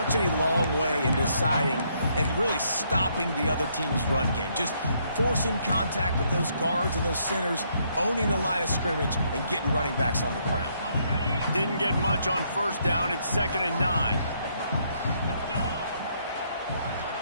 a long way in deciding and really stopping the other team's run game. Just forcing contact with those guards and those centers, owning the line of scrimmage, and getting running backs on the ground. Didn't get much on 1st down. It's 2nd and 9.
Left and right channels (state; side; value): inverted; both; correlation -0.72